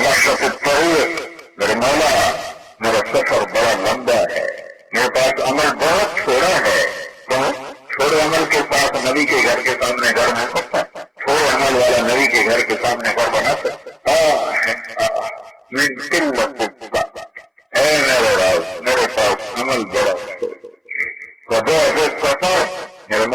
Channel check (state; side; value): identical; both; correlation 1.00